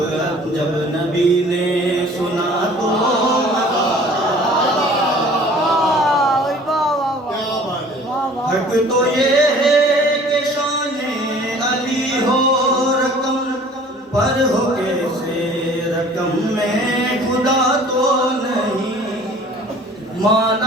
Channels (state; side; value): normal; both; correlation 0.50